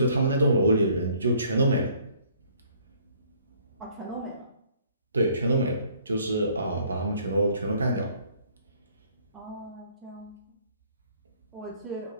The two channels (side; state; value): both; inverted; correlation -0.60